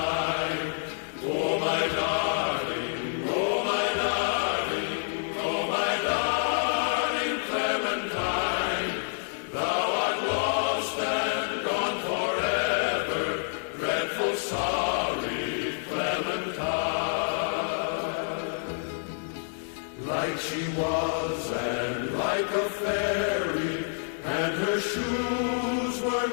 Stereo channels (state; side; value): silent; right; digital silence